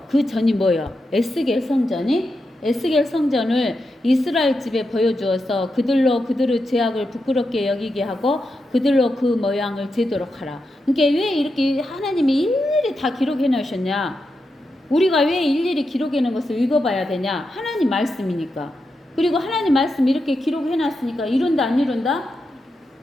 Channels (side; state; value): both; normal; correlation 0.87